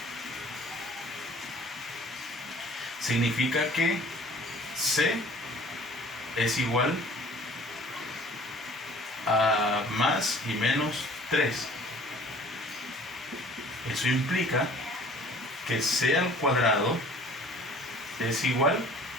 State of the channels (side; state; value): both; normal; correlation 0.50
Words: significa que C es igual a más y menos 3. Eso implica que C al cuadrado es igual